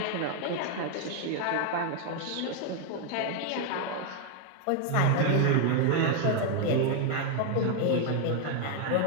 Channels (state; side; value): different; both; correlation 0.00